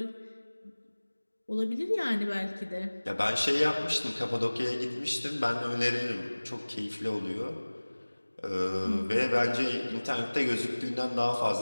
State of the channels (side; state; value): both; inverted; correlation -1.00